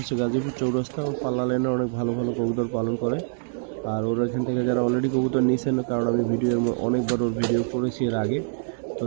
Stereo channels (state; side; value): silent; left; 62 dB below the other